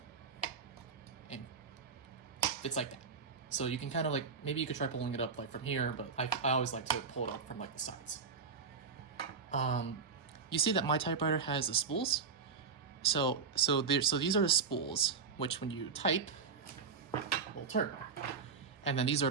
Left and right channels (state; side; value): quieter; left; 5.3 dB